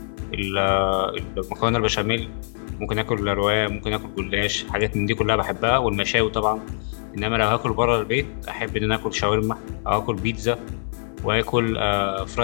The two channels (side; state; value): right; silent; 63 dB below the other